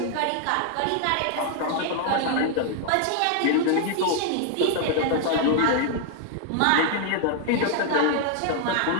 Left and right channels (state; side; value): different; both; correlation 0.00